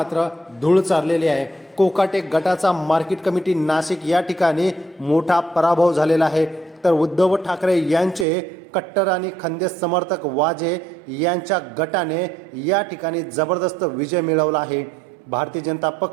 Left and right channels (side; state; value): left; drops out; at 8.2 s